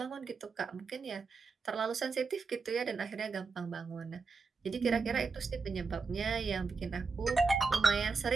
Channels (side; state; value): left; quieter; 4.6 dB